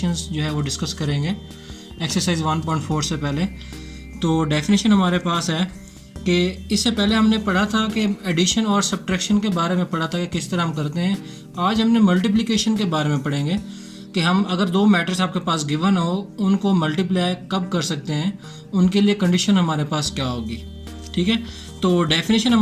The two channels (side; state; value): both; identical; correlation 1.00